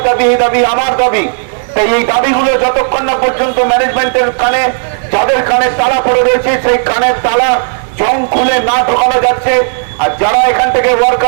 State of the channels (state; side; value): silent; left; digital silence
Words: দাবি, এই দাবি আমার দাবি। তাই এই দাবিগুলো যতক্ষণ না পর্যন্ত ম্যানেজমেন্টের কানে, যাদের কানে তালা পড়ে রয়েছে, সেই কানের তালা জং খুলে না ঢোকানো যাচ্ছে, আর যারা এখান থেকে